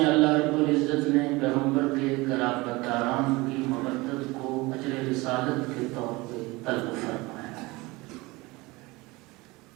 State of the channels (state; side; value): quieter; left; 22.6 dB